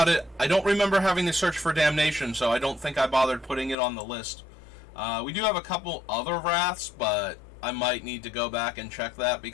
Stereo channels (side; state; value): right; drops out; at 3.8 s